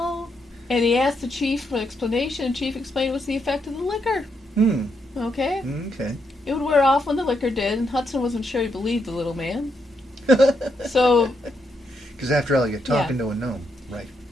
And he asked the chief for an explanation, and the chief explained it was the effect of the liquor. Okay? Okay. It would wear off when the liquor did, and Hudson wasn't sure he believed the little man. So... Because after all, you're talking to a gnome, right?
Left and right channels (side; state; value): both; normal; correlation 0.79